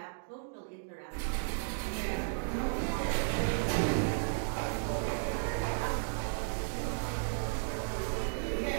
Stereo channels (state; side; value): silent; left; digital silence